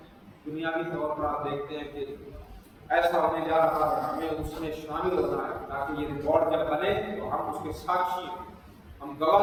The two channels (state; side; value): identical; both; correlation 1.00